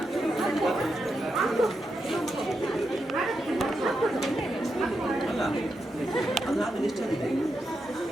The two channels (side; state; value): both; normal; correlation 0.85